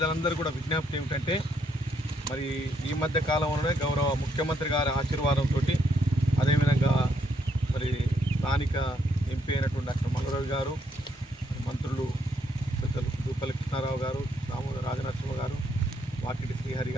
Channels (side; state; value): both; normal; correlation 0.74